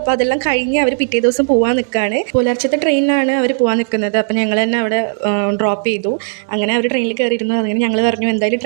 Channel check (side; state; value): left; silent; 69 dB below the other